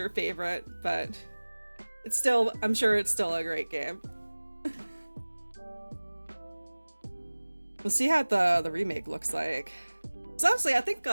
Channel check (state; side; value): inverted; both; correlation -1.00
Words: favorite, but it's still, I'm sure it's still a great game. We'll see how the remake looks like. So honestly, I think